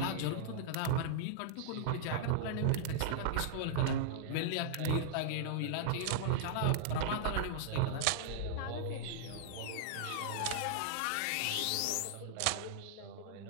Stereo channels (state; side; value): different; both; correlation -0.01